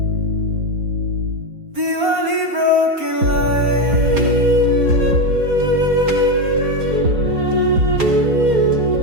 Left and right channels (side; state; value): left; late; 4.3 ms